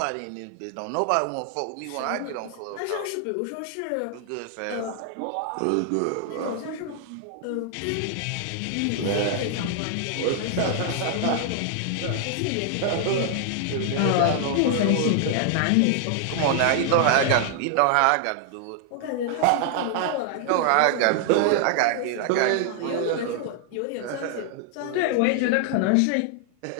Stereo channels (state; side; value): different; both; correlation 0.00